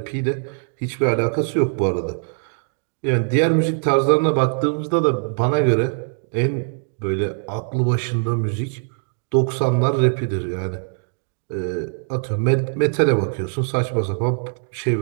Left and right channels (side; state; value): left; silent; digital silence